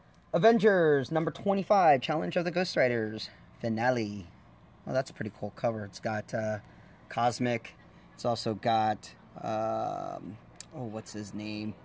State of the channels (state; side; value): identical; both; correlation 1.00